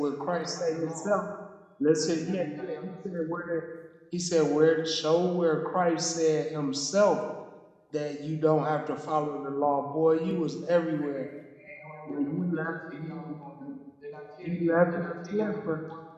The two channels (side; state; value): both; identical; correlation 1.00